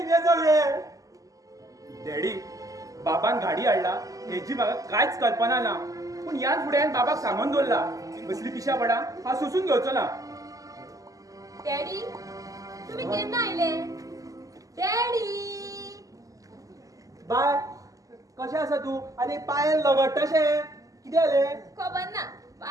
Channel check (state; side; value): late; left; 0.17 ms